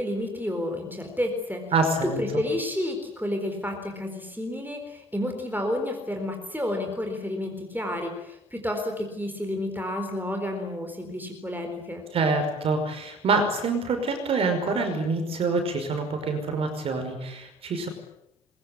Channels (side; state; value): both; normal; correlation 0.53